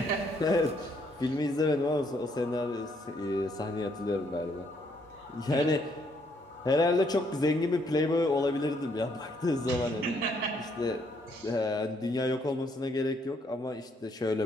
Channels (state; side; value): normal; both; correlation 0.70